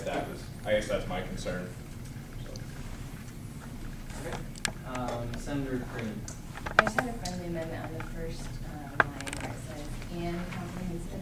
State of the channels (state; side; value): identical; both; correlation 1.00